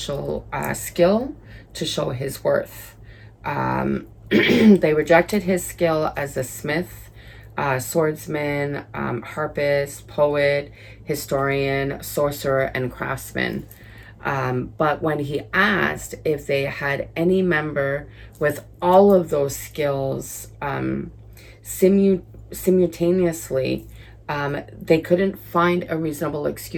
skill to show his worth. They rejected his skill as a smith, swordsman, harpist, poet, historian, sorcerer, and craftsman. But when he asked if they had any member with all of those skills simultaneously, they couldn't find a reasonable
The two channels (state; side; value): identical; both; correlation 1.00